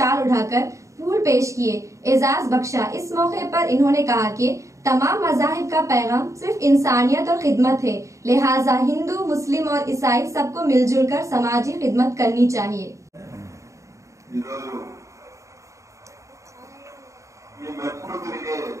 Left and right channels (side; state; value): left; late; 0.15 ms